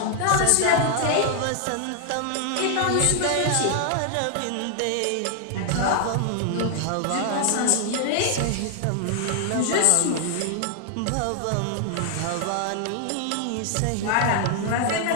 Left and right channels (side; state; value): both; different; correlation 0.00